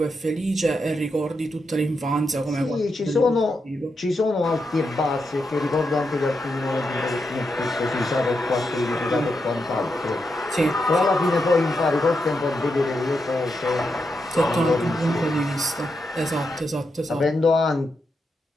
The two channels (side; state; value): both; normal; correlation 0.84